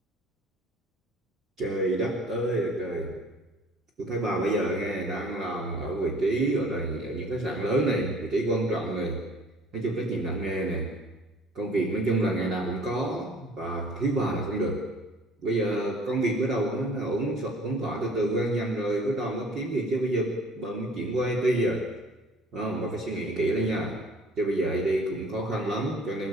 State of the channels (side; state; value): both; normal; correlation 0.51